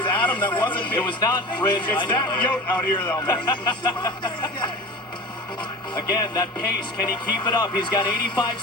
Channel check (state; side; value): normal; both; correlation 0.33